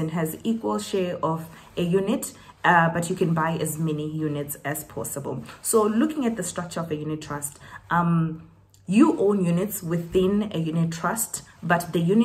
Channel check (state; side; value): identical; both; correlation 1.00